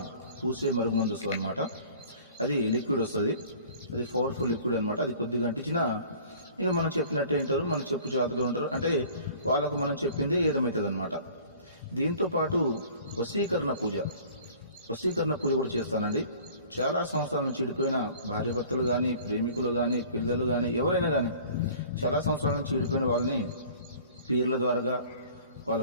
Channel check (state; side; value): inverted; both; correlation -0.48